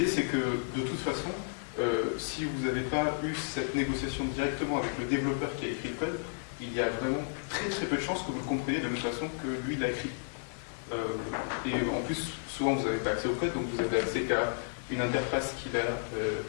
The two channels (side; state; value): right; silent; digital silence